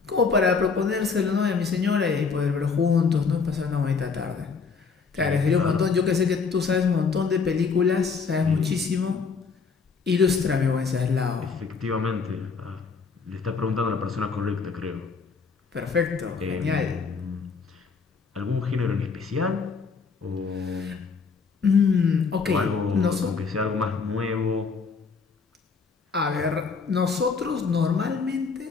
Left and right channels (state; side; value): quieter; right; 5.1 dB